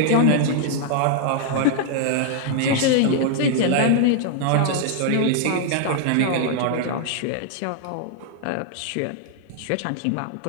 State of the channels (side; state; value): both; different; correlation 0.00